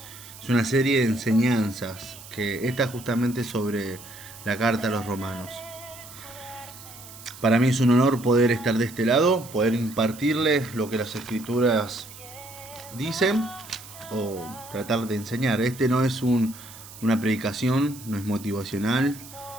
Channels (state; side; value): noise; right; hiss, 17 dB below the sound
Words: Es una serie de enseñanzas que está justamente sobre la Carta a los Romanos. Para mí es un honor poder estar de este lado, poder impartirles lo que las escrituras dicen o tratar de enseñar. Este no es una predicación, no es motivacional,